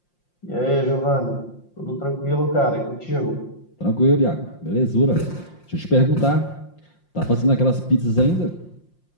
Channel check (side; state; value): right; late; 5.7 ms